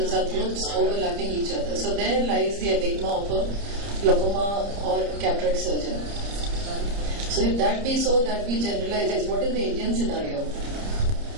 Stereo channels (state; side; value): late; left; 30 ms